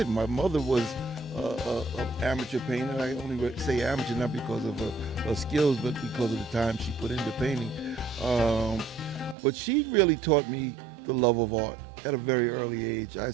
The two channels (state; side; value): drops out; left; at 9.3 s